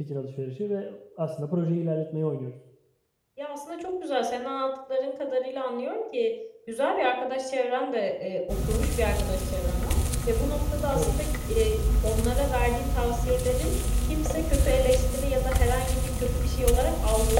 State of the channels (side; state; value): both; identical; correlation 1.00